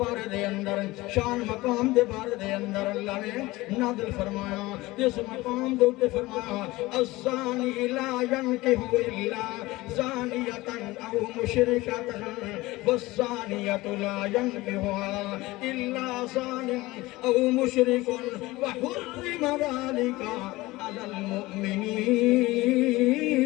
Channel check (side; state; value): right; quieter; 19.8 dB